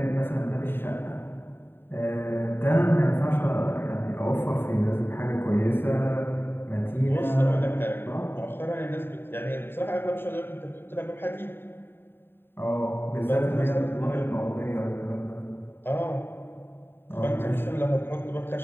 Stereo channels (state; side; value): late; right; 0.11 ms